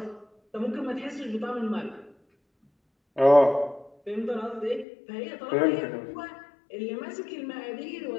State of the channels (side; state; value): right; drops out; at 4.9 s